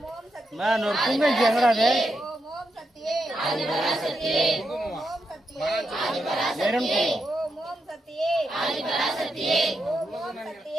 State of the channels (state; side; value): normal; both; correlation 0.85